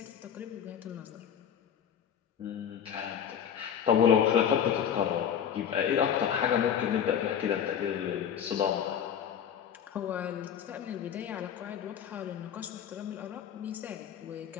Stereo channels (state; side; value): quieter; right; 8.6 dB